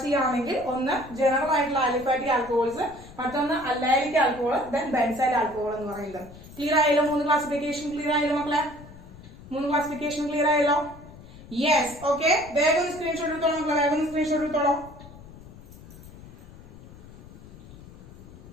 ചെയ്യുകയാണെങ്കിൽ ഒന്ന് ജനറൽ ആയിട്ടുള്ള ആലിഫാറ്റിക് ആൽക്കഹോൾസ്, മറ്റൊന്ന് അല്ലൈലിക് ആൽക്കഹോൾ, ദെൻ ബെൻസൈൽ ആൽക്കഹോൾ എന്ന് പറയുന്നത്. ക്ലിയർ ആയല്ലോ? 3 ക്ലാസിഫിക്കേഷൻ ക്ലിയർ ആയല്ലോ മക്കളെ? 3 ക്ലാസിഫിക്കേഷൻ ക്ലിയർ ആയല്ലോ? Yes, okay. വേഗം സ്ക്രീൻഷോട്ട് എടുത്തോളൂ മക്കളെ, വേഗം സ്ക്രീൻഷോട്ട് എടുത്തോളൂ.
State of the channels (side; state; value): left; noise; rumble, 18 dB below the sound